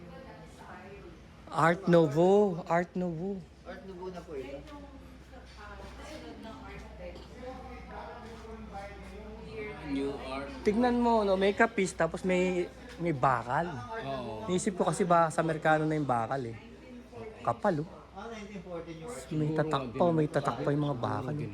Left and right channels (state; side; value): identical; both; correlation 1.00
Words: Art Nouveau. Art Nouveau. Art Nouveau na po ito. New art. Tignan mo, no, may kapis tapos may bakal. Oo. Naisip ko kasi ba sa Amerikano na yung bakal eh. Kapal, oh. 1914 yung art. May tatak pa yung mga bakal. Eh.